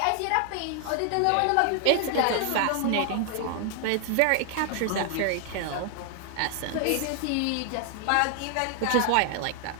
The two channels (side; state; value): both; different; correlation 0.00